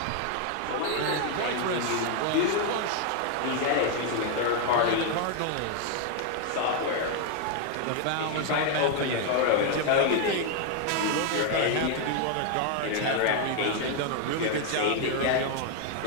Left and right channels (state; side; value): different; both; correlation 0.01